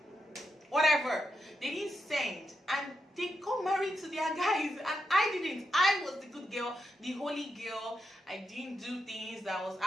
whatever. They didn't send. And they got married to their guys. And I didn't. I was the good girl, the holy girl. I didn't do things that I was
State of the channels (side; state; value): both; normal; correlation 0.85